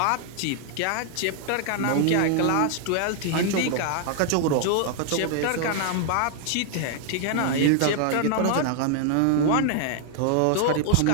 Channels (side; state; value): both; different; correlation 0.00